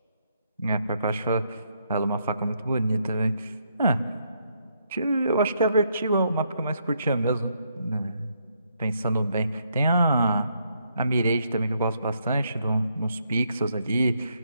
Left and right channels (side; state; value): both; inverted; correlation -0.75